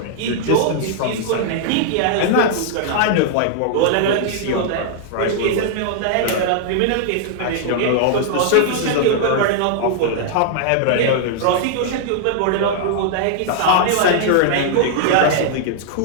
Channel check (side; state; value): both; different; correlation -0.01